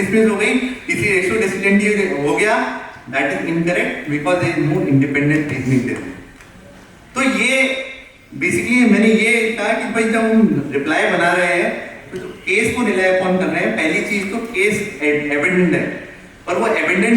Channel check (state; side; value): identical; both; correlation 1.00